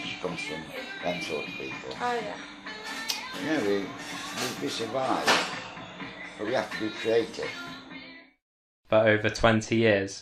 comes from them sort of people. Oh yeah. Yeah, we survive, but we have to be creative. For over 20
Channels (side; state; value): both; identical; correlation 1.00